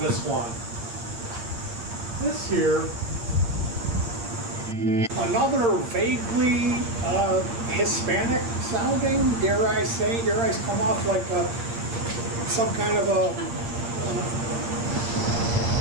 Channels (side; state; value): left; late; 8.6 ms